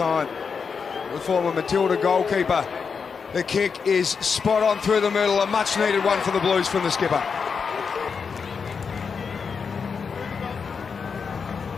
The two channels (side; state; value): right; quieter; 5.8 dB